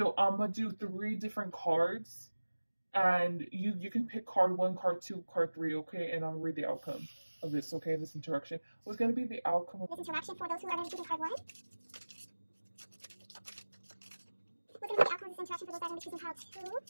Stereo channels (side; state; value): both; inverted; correlation -1.00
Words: I'm gonna do three different cards, and you can pick card one, card two, card three, okay? And I'll read the outcome of this, okay? This interaction. What's gonna be the outcome of this interaction for those who are going to be choosing card one? What's going to be the outcome of this interaction for those that are going to be choosing card two?